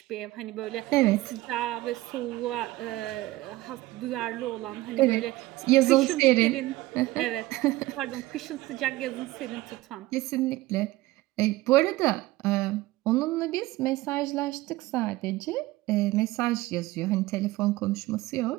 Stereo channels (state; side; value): quieter; left; 18.2 dB